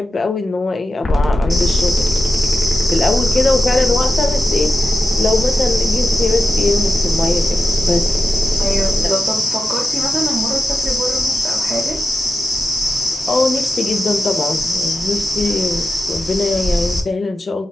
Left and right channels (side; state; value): both; normal; correlation 0.91